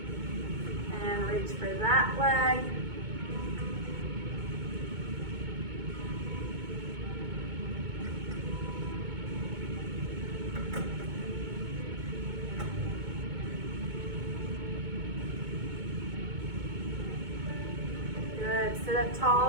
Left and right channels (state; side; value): late; left; 2.2 ms